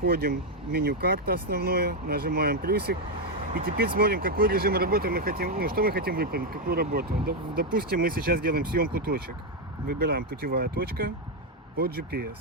в меню карта основное, нажимаем плюсик. И теперь смотрим, какой режим работы мы хотим, что мы хотим выполнить, какую работу. Допустим, мы сейчас делаем съемку точек. Выбираем путевая точка под GPS.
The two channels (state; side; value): normal; both; correlation 0.03